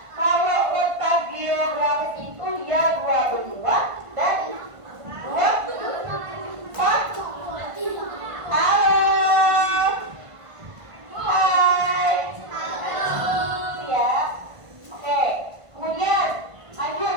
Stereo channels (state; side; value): late; left; 1.5 ms